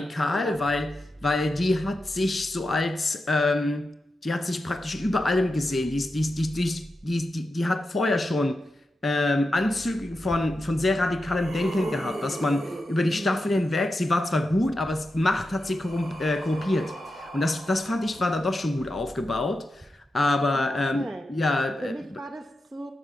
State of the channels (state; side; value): normal; both; correlation 0.89